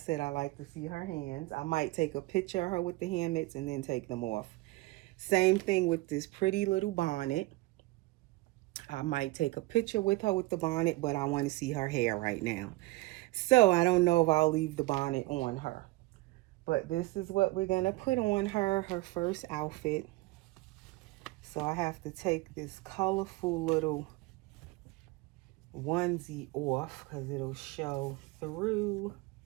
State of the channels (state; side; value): quieter; left; 21.1 dB